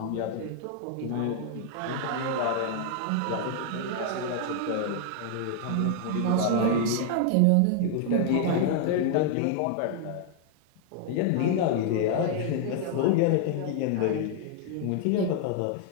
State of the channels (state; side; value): different; both; correlation 0.00